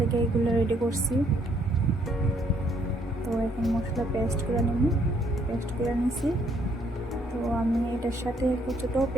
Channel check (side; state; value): both; normal; correlation 0.68